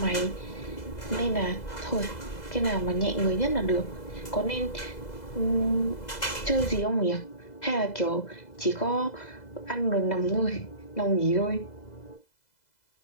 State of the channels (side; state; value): right; late; 2.0 ms